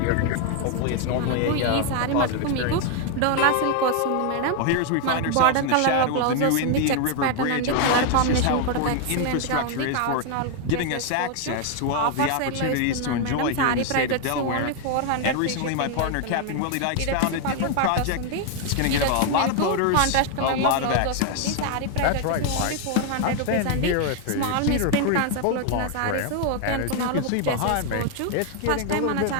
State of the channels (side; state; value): both; different; correlation 0.01